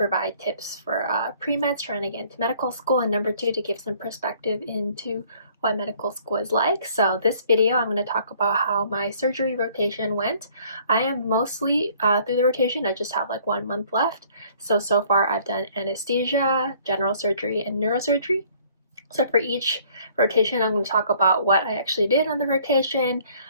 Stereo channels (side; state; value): both; inverted; correlation -0.59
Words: tips for pre-meds trying to get into medical school, and number two to give some perspective into what medical school is like. So this video, I'm going to talk about how my surgery rotation went. I am mostly through the rotation. I just have like 1 month left. So far I've done anesthesia, general surgery, and neurosurgery. So for each rotation, I'm going to talk about what I actually did on the rotation,